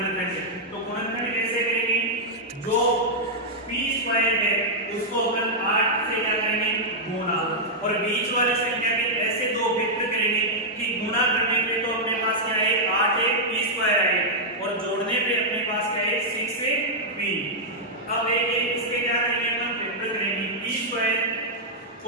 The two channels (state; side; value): normal; both; correlation -0.06